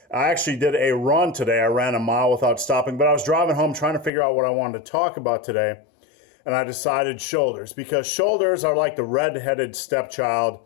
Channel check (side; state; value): right; drops out; at 4.1 s